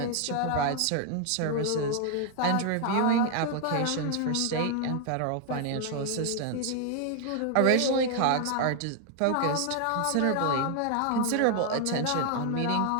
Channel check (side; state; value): both; different; correlation 0.00